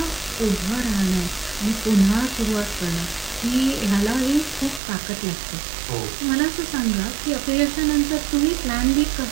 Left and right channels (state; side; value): drops out; left; at 4.8 s